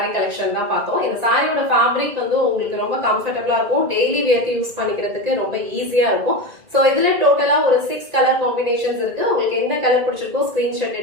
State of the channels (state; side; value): late; left; 1.9 ms